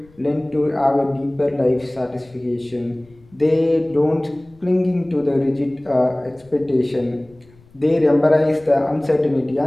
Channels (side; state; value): left; noise; rumble, 28 dB below the sound